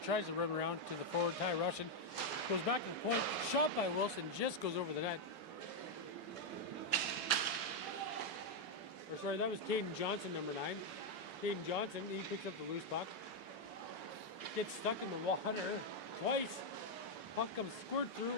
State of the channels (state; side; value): normal; both; correlation 0.01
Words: to run around to the forward, Ty Russian. Goes back to the point, shot by Wilson, just goes over the net. Or sorry, that was Caden Johnson, number 9. Caden Johnson, he picks up the loose puck. Gets stuck in the water twice. Puck comes squirt